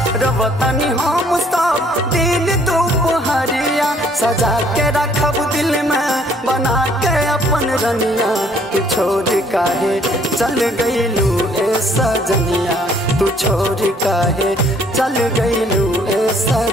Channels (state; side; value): normal; both; correlation 0.62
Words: रवतनी हम सब दिन दोपहरिया, सजा के रखब दिल में बना के अपन रनिया। तू छोड़ काहे चल गइलू ए सजनिया, तू छोड़ काहे चल गइलू ए